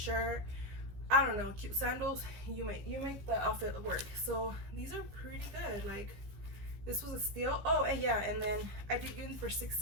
I don't know, cute sandals, you make the outfit work. So these are pretty good. Like this was a steal. Oh, and yeah, and then I did get them for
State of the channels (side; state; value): left; late; 15 ms